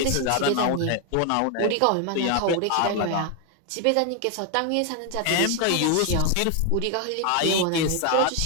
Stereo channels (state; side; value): different; both; correlation 0.01